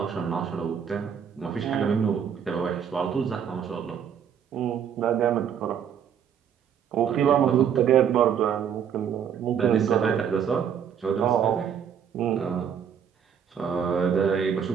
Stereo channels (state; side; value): quieter; left; 8.1 dB